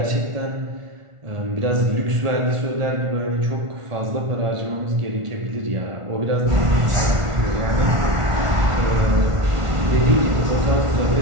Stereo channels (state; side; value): late; left; 1.4 ms